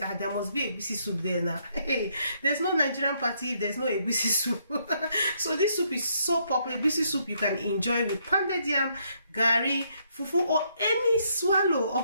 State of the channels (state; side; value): inverted; both; correlation -0.72